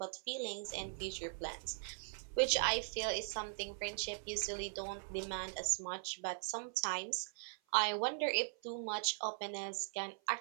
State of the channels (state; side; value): silent; left; 51 dB below the other